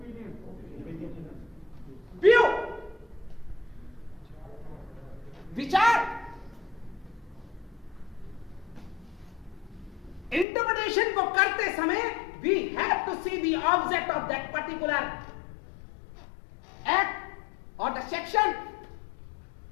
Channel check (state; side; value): drops out; right; at 10.5 s